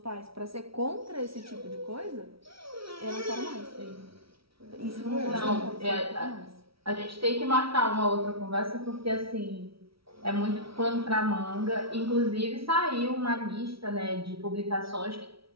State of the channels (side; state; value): left; late; 0.75 ms